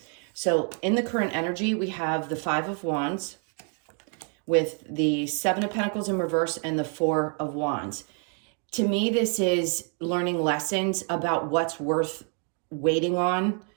So in the current energy, we have the Five of Wands with the Seven of Pentacles in reverse and the Four of Wands. To me, this is learning lessons about what's worth waiting on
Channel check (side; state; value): left; quieter; 37.3 dB